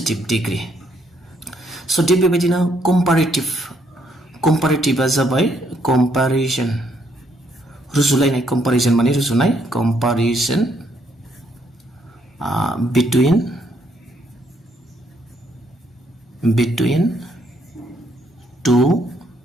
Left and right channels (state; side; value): normal; both; correlation 0.71